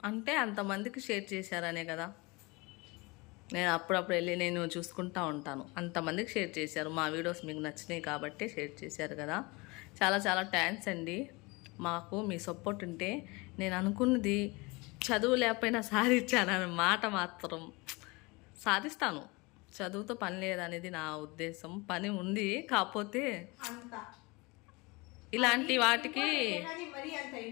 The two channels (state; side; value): quieter; right; 25.6 dB